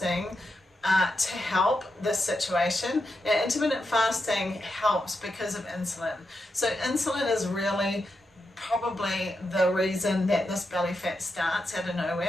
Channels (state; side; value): normal; both; correlation 0.86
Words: to help this situation. Now, intermittent fasting helps because of insulin. So insulin is really probably the reason that this belly fat starts out of